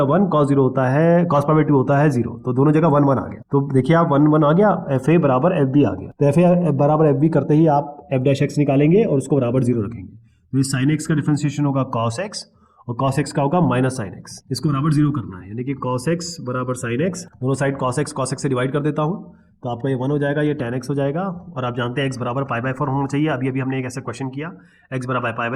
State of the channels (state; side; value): identical; both; correlation 1.00